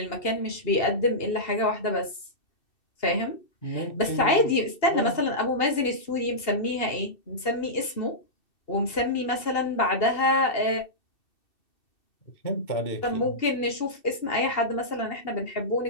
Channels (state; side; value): late; right; 2.8 ms